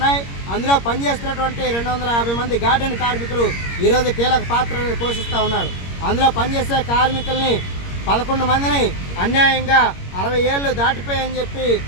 అందులో పనిచేస్తున్నటువంటి 250 మంది గార్డెన్ కార్మికులు ఈరోజు కీలక పాత్రను పోషిస్తూ ఉన్నారు. అందులో పనిచేసే కార్మికుల్ని 11 మందిని అన్యాయంగా 60 ఏళ్ళు దాటిపోయని చెప్పి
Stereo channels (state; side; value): late; right; 21 ms